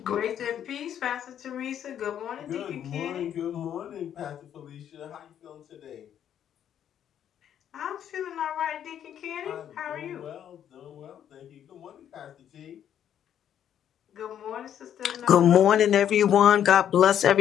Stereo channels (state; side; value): quieter; right; 9.8 dB